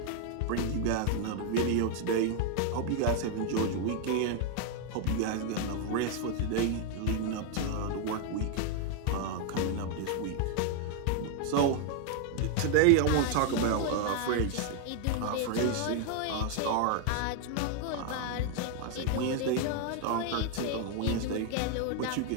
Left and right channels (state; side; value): different; both; correlation 0.00